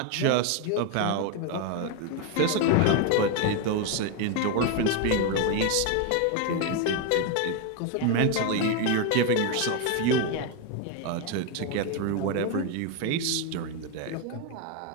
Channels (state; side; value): different; both; correlation 0.01